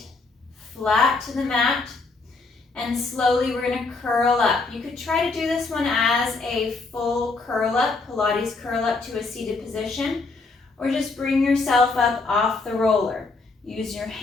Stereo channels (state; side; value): quieter; right; 3.8 dB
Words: flat to the mat, and slowly we're going to curl up. You could try to do this one as a full curl up, Pilates curl up to a seated position, or just bring yourself up off the roller. Use your